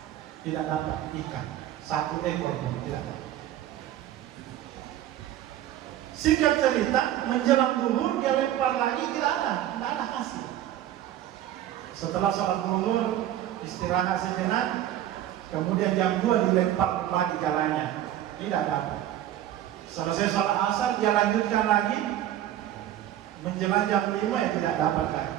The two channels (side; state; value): left; quieter; 12.4 dB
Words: tidak dapat ikan, satu ekor pun tidak dapat. Singkat cerita, menjelang duhur dia lempar lagi, tidak ada hasil. Setelah sholat zuhur istirahat sejenak, kemudian jam 2 dilempar kembali jalannya, tidak dapat. Selesai sholat asar dia lanjutkan lagi, menjelang jam 5 ya tidak dapat lagi.